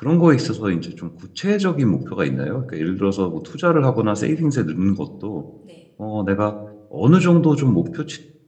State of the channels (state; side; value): identical; both; correlation 1.00